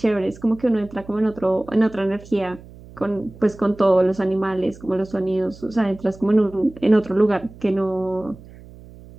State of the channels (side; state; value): right; noise; hum, 20 dB below the sound